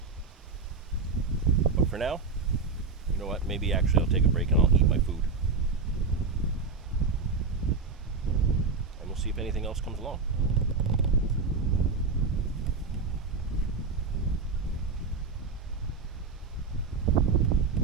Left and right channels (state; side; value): quieter; left; 4.6 dB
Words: But for now, you know what, maybe actually I'll take a break and I'll eat my food, and we'll see if anything else comes along.